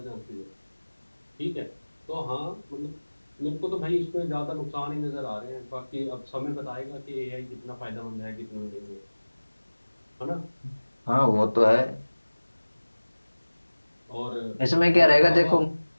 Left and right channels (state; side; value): inverted; both; correlation -1.00